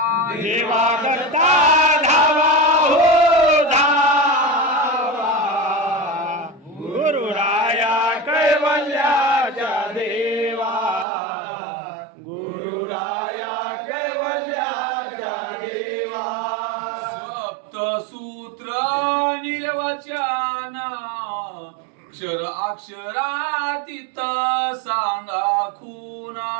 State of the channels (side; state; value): left; drops out; at 11.1 s